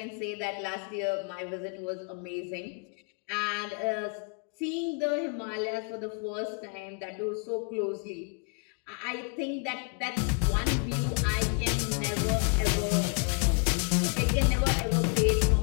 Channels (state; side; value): quieter; right; 37.1 dB